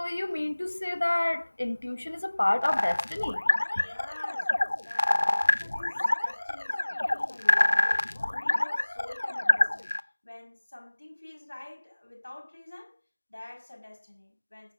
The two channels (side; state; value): both; inverted; correlation -1.00